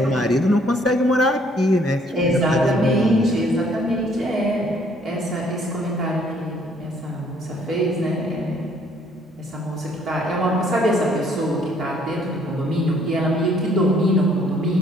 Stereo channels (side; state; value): both; normal; correlation 0.63